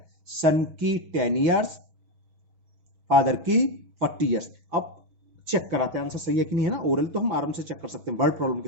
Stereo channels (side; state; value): left; late; 6.2 ms